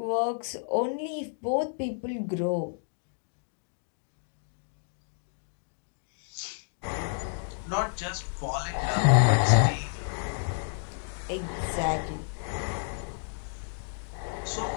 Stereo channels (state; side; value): silent; right; digital silence